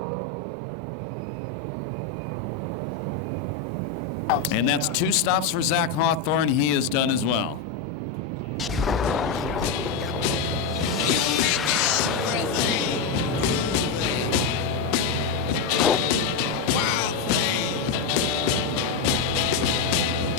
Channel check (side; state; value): right; quieter; 4.7 dB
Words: And that's 2 stops for Zach Hawthorne. He is done as well.